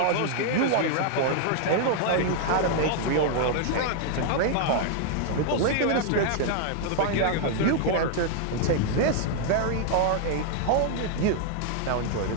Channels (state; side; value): different; both; correlation 0.00